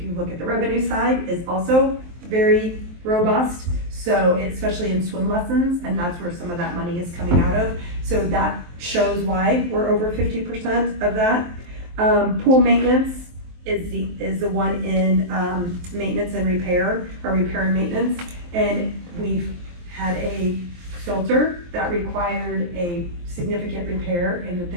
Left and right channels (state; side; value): late; left; 23 ms